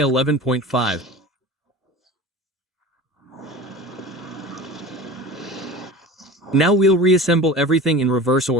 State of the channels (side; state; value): both; normal; correlation 0.35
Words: Now we'll reassemble everything in reverse